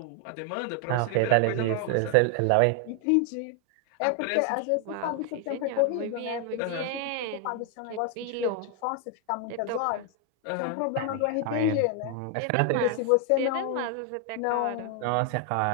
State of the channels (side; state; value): both; different; correlation 0.00